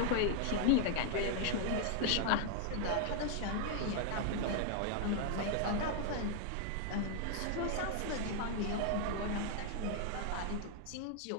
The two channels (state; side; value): different; both; correlation 0.00